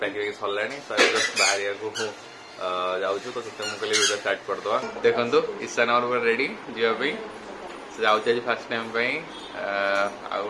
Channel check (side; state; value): both; identical; correlation 1.00